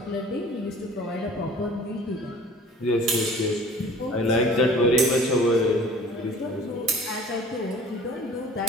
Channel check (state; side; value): normal; both; correlation 0.47